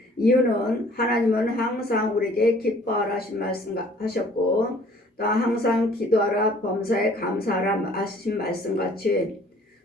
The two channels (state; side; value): normal; both; correlation 0.55